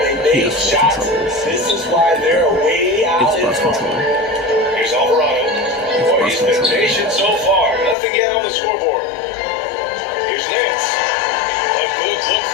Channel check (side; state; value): right; drops out; at 8.0 s